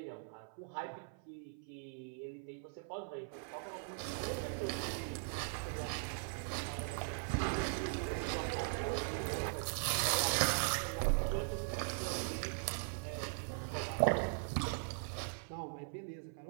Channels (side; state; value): left; silent; 51 dB below the other